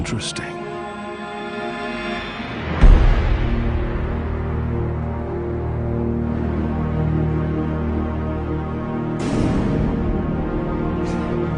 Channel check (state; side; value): identical; both; correlation 1.00